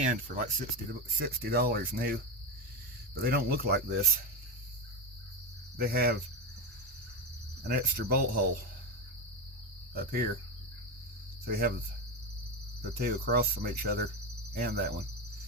for like $60 new, but they don't look like this. They have an extra bolt hole up here, so you have the two across from each other and that one.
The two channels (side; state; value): both; normal; correlation 0.15